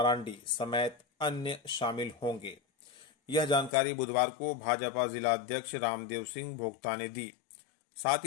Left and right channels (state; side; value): drops out; right; at 3.7 s